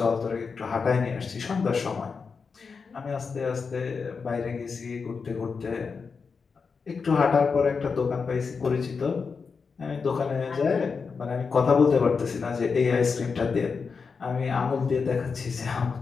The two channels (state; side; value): quieter; right; 5.2 dB